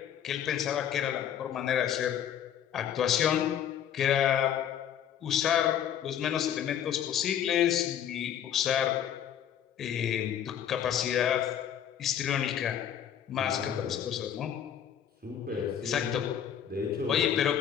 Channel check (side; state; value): right; quieter; 9.6 dB